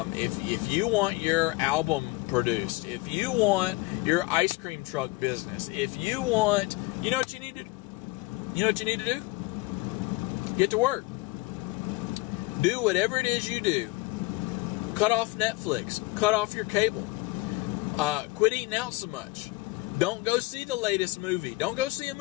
if you want your album produced, if you want your ice cream truck business, if you want, you know what you need to do? Get to work. Do whatever it is you do. Cut off Netflix. Cut off your cable. Quit eating out so much. Don't go see the latest movie. Don't go see a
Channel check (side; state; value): right; quieter; 22.3 dB